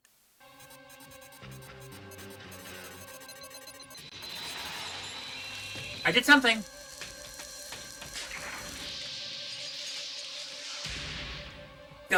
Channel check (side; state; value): both; identical; correlation 1.00